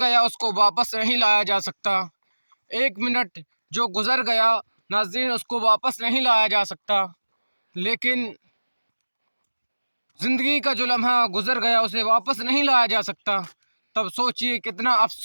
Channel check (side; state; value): both; inverted; correlation -1.00